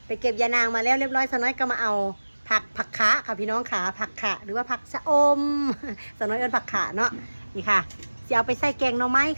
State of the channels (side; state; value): both; inverted; correlation -1.00